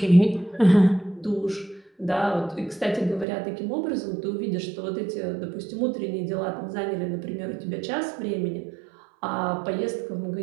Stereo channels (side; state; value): left; drops out; at 3.2 s